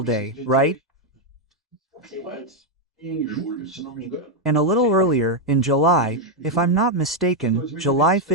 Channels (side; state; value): both; normal; correlation 0.01